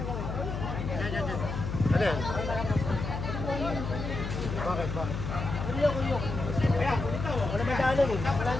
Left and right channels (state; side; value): noise; left; hum, 4 dB below the sound